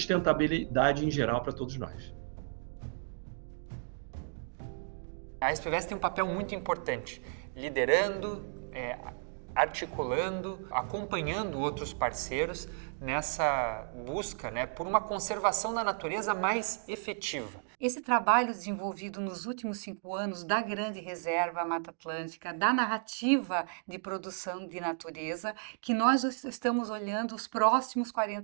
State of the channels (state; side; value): silent; left; digital silence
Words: em geral para todos nós. A SPVS tem um papel muito importante, liderando, articulando, acompanhando outros parceiros nessa busca, né, por uma conservação da natureza mais efetiva. Esse trabalho desenvolvido nos últimos 5 anos da Grande Reserva Mata Atlântica, da narrativa de produção de natureza, que nós estamos olhando os próximos